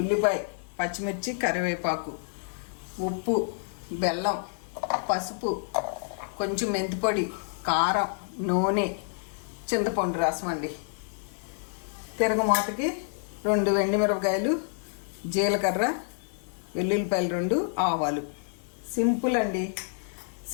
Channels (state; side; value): silent; right; digital silence